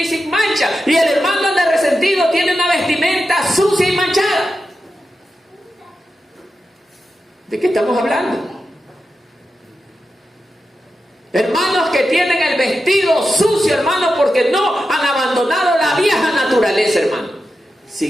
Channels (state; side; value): normal; both; correlation 0.90